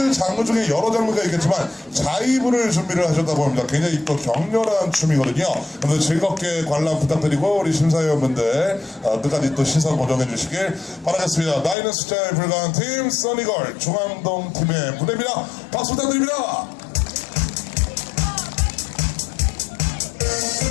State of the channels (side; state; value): right; drops out; at 11.8 s